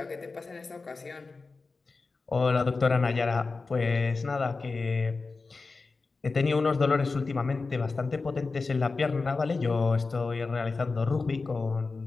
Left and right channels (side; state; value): right; quieter; 4.0 dB